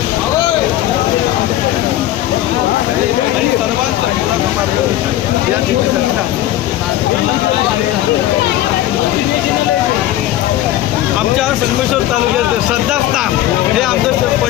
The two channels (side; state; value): right; quieter; 13.9 dB